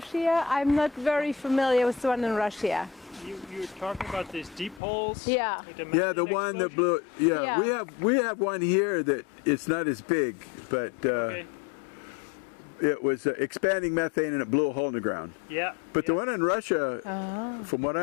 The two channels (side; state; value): right; drops out; at 4.8 s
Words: I'm not very familiar with the one in Russia. You're talking about these deep holes? Yeah. Yeah, the one that blew. Yeah, we have one here that it's not as big, but it was expanding methane and it blew a hole in the ground. Yeah. But the one in Russia, from what